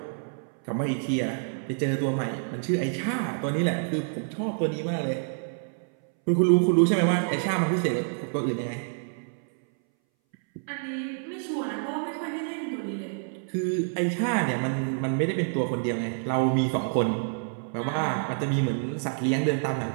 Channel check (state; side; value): silent; left; 60 dB below the other